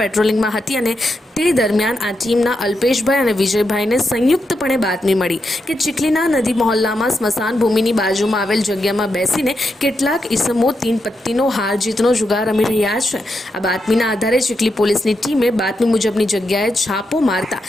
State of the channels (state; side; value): normal; both; correlation 0.85